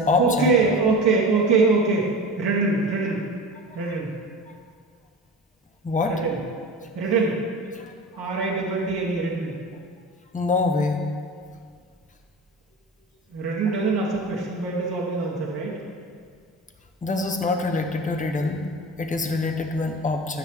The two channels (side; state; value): both; normal; correlation 0.33